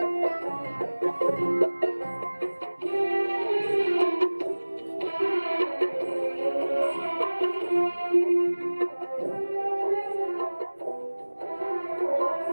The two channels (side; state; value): both; inverted; correlation -1.00